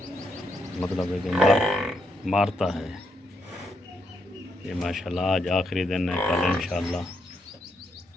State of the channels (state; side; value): normal; both; correlation 0.78